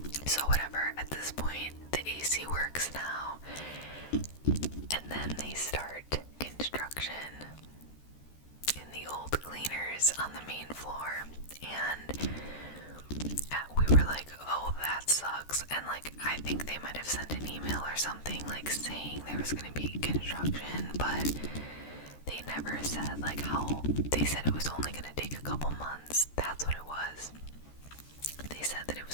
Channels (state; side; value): late; right; 14 ms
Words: So whatever, at this point, the AC works now. And then they start construction in the old cleaners on the main floor. And we were like, oh, that sucks. And like, I think they might have sent an email or something like saying there was going to be construction, but they never said like how. They said it was only going to take a couple months. That's what it was. They said that it